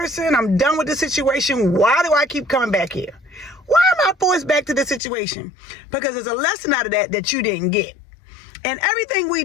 I'm done with this situation. Why do I keep coming back here? Why am I forced back to this situation? Because there's a lesson out of that you didn't get. And everything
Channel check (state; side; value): drops out; right; at 5.0 s